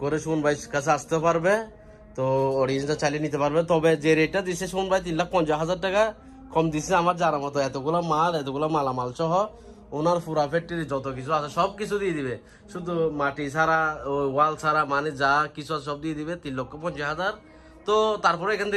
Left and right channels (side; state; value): both; identical; correlation 1.00